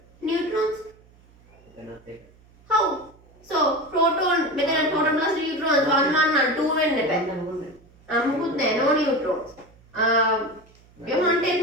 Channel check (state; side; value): noise; right; hum, 28 dB below the sound